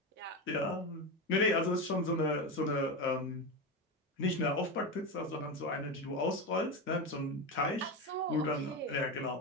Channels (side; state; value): both; normal; correlation 0.17